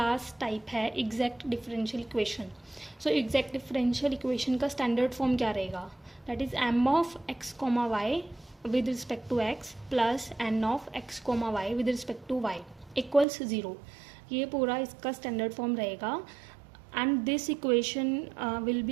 टाइप है exact differential equation. So exact differential equation का स्टैंडर्ड फॉर्म क्या रहेगा? That is m of x comma y with respect to x plus n of x comma y with respect to y equals 0. ये पूरा इसका स्टैंडर्ड फॉर्म रहेगा. And this equation will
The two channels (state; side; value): drops out; left; at 13.2 s